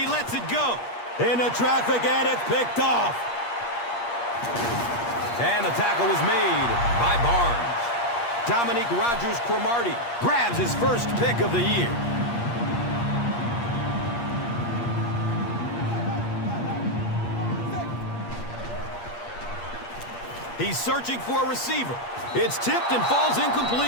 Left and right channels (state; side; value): late; right; 8.5 ms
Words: lets it go. Into traffic, and it's picked off. And the tackle was made by Barnes. Dominique Rodgers-Cromartie grabs his first pick of the year. He's searching for a receiver. It's tipped and falls